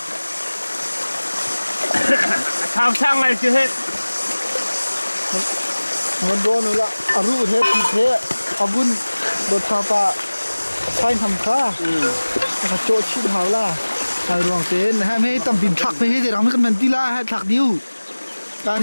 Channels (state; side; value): inverted; both; correlation -1.00